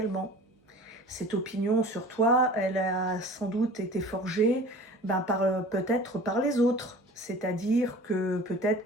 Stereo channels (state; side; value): normal; both; correlation 0.42